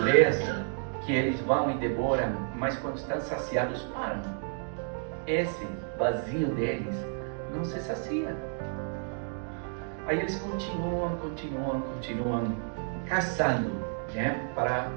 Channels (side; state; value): left; silent; 57 dB below the other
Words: que eles vão e devoram, mas quando estão saciados param. Esse vazio deles não se sacia. Aí eles continuam caçando, né? Para